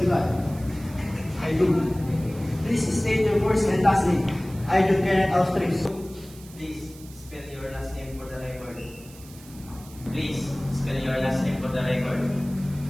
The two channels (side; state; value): right; noise; hiss, 21 dB below the sound